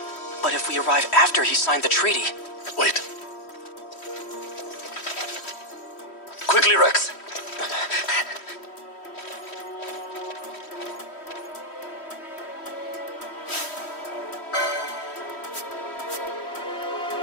But if we arrive after he signed the treaty... Wait. Quickly, Rex.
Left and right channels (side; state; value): right; late; 3.1 ms